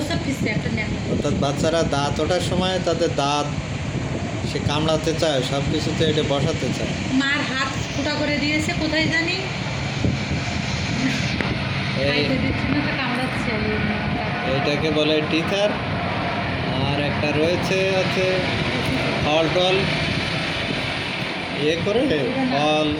অর্থাৎ বাচ্চারা দাঁত ওঠার সময় তাদের দাঁত সে কামড়াতে চায়, সব কিছুতে এটা বসাতে চায়। মার হাত ফুটা করে দিয়েছে কোথায় জানি, এইটাকে বলে টিচার। আর একটা রয়েছে হচ্ছে ফল টল ইয়ে করে, ফল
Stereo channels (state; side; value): identical; both; correlation 1.00